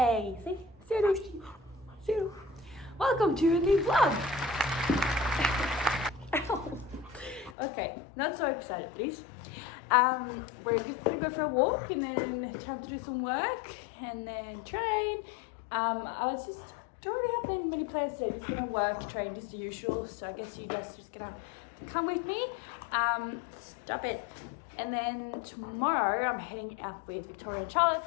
See you. Welcome to a new vlog. Okay, not so excited, please. We're just gonna go for a walk and then time to do some work and then train. Don't really have many plans today. Just gonna work, train, just the usual. So I guess you guys are just gonna come with me. Stop it. And then tomorrow I'm heading out with Victoria and Charlotte,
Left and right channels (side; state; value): right; drops out; at 7.6 s